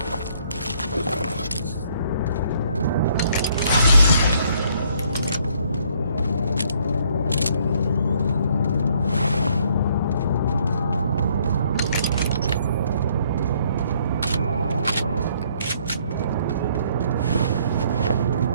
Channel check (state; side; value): inverted; both; correlation -0.65